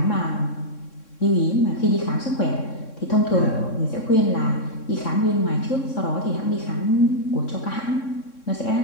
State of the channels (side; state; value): right; late; 3.6 ms